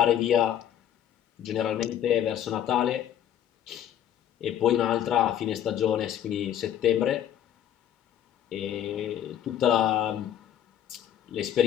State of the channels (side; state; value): right; quieter; 10.4 dB